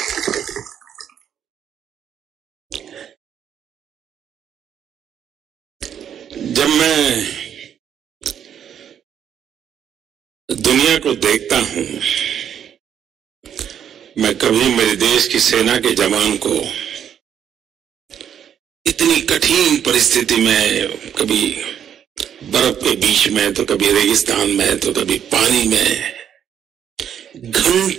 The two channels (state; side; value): quieter; left; 9.0 dB